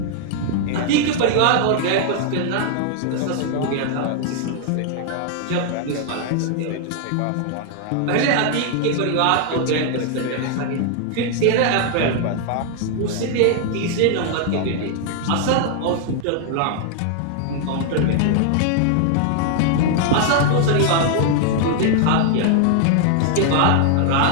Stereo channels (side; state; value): both; different; correlation 0.00